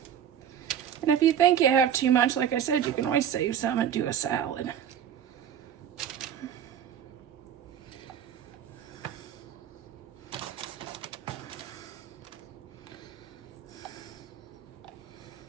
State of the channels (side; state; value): left; quieter; 9.2 dB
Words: And if you think you have too much, like I said, you can always save some and do a salad.